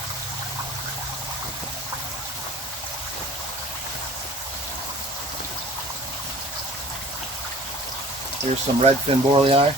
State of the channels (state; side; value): normal; both; correlation 0.48